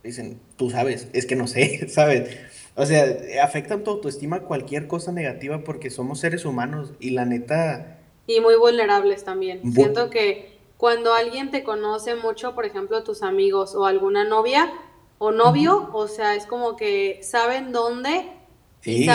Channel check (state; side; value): identical; both; correlation 1.00